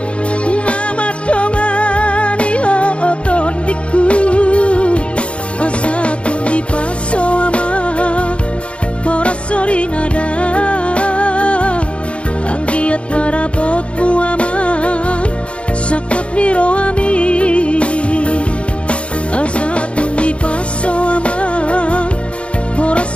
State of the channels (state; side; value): late; right; 0.060 ms